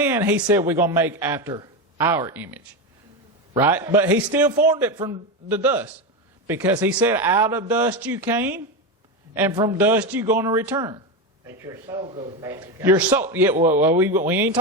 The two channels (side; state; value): both; normal; correlation 0.15